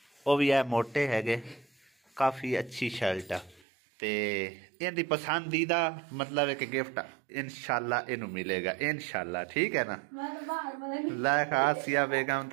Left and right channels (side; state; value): left; drops out; at 3.6 s